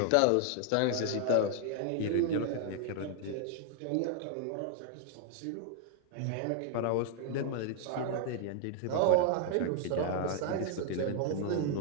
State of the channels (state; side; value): different; both; correlation 0.00